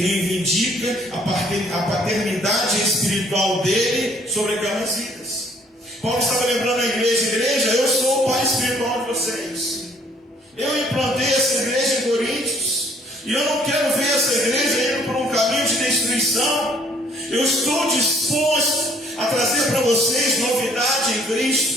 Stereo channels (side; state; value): both; normal; correlation 0.61